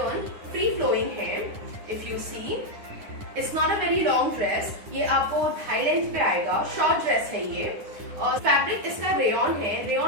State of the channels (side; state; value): left; late; 9.8 ms